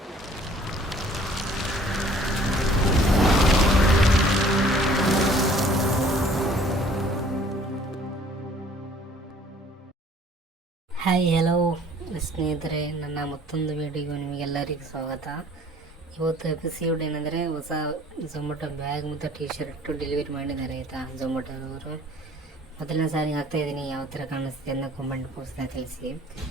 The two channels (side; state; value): both; normal; correlation 0.54